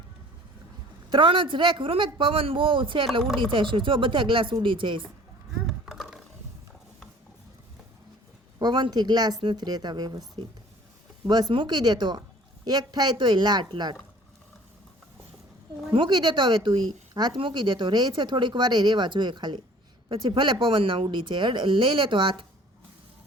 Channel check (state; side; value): normal; both; correlation 0.50